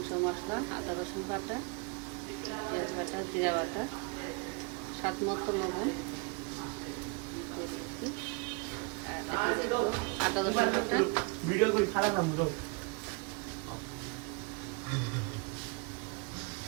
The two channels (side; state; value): left; quieter; 30.2 dB